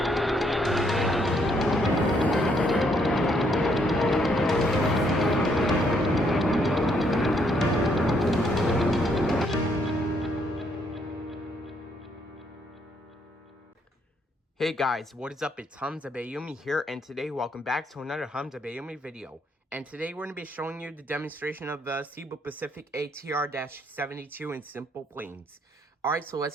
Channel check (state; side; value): normal; both; correlation 0.71